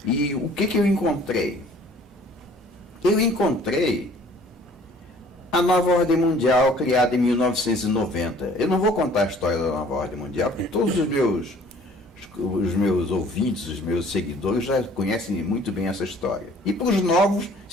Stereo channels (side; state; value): both; normal; correlation 0.54